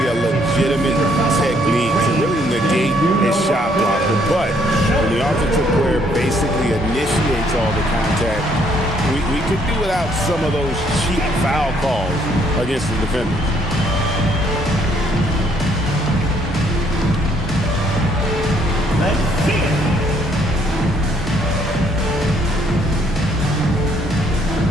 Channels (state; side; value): normal; both; correlation 0.67